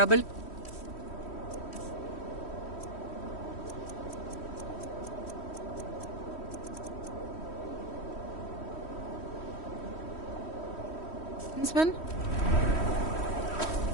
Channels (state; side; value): late; right; 3.1 ms